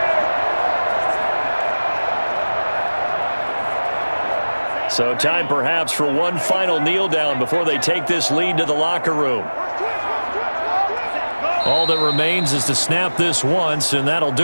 So time perhaps for one final kneel down before they take this lead to the locker room. All that remains is to snap this once, and that'll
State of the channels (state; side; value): inverted; both; correlation -1.00